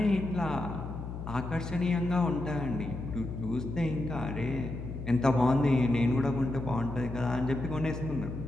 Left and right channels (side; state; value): left; noise; hum, 8 dB below the sound